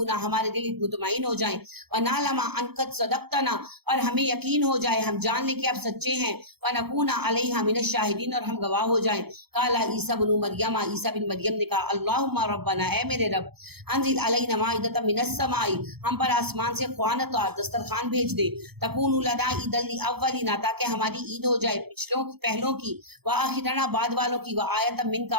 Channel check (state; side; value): late; left; 0.97 ms